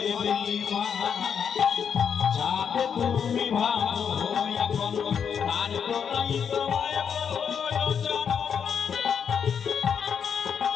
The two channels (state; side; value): quieter; right; 7.3 dB